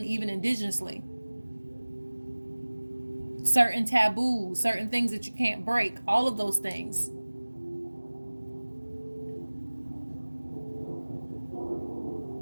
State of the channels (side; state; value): both; inverted; correlation -1.00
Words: even indigenously. Certain taboos, certain things that you can't break, all of those things.